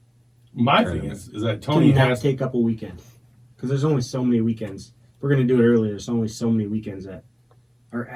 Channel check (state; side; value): identical; both; correlation 1.00